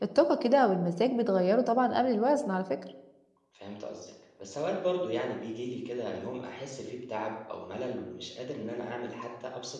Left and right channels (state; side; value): identical; both; correlation 1.00